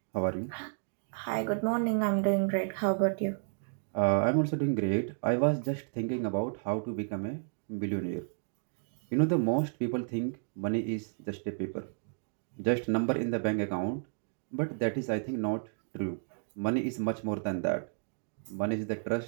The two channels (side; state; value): left; silent; digital silence